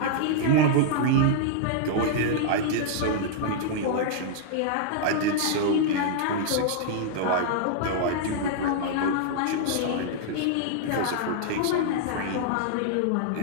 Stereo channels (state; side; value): different; both; correlation -0.01